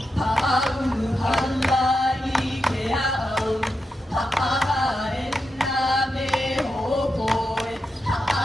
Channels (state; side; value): normal; both; correlation 0.87